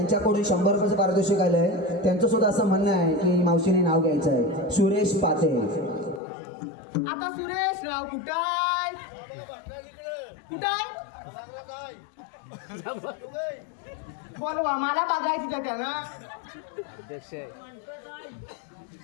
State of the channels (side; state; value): right; drops out; at 6.2 s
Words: 100 रुपयाचं पारितोषिक आलंय. त्यांचं सुद्धा असं म्हणणं आहे की मावशीने नाव घ्यायचं आहे. सुरेश पाते. आता सुरेश राव कुठाय कुठाय बोलवा मला बघायची तर त्यांना